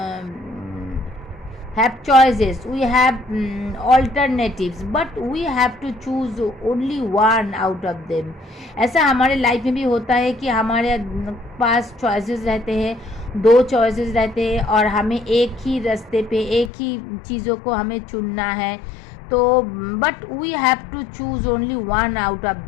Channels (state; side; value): drops out; right; at 16.7 s